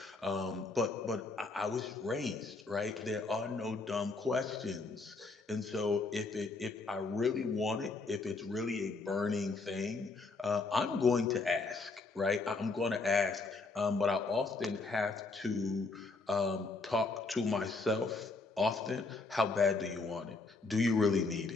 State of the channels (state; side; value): quieter; right; 3.8 dB